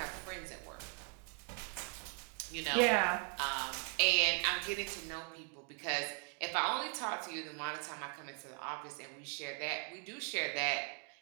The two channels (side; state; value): left; quieter; 36.2 dB